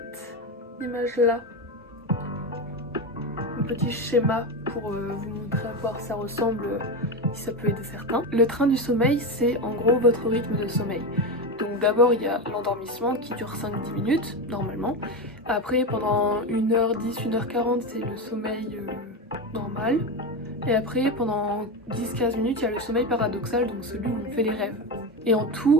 image là, un petit schéma pour vous montrer à quoi ça ressemble, si ça peut aider certains. Le train du sommeil, c'est en gros votre rythme de sommeil. Donc d'abord il y a l'endormissement qui dure 5-10 minutes normalement. Après pendant 1h10, 1h40 c'est le sommeil normal. Et après pendant 10-15 minutes il y a le sommeil paradoxal, donc celui où on fait les rêves. Et en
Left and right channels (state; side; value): normal; both; correlation 0.16